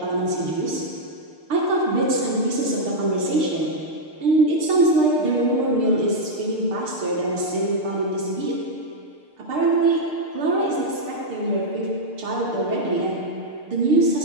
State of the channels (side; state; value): left; late; 6.6 ms